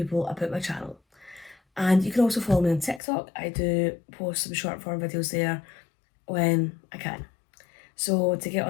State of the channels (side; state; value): right; drops out; at 3.0 s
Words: about my channel. And you can also follow me on TikTok. I do post some short form videos there when I can. So to get